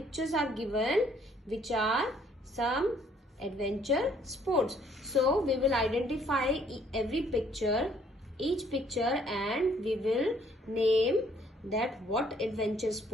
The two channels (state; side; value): normal; both; correlation 0.63